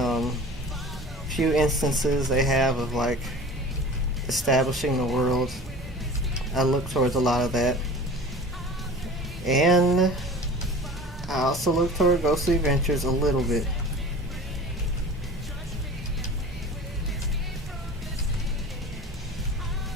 few instances they have of like establishing the world. I look towards a lot of that, and I also look toward Ghostly Adventures a little bit.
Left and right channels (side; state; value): both; normal; correlation 0.38